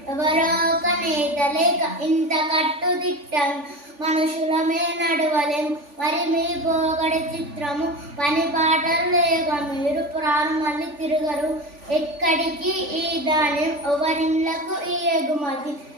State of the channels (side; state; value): left; late; 3.5 ms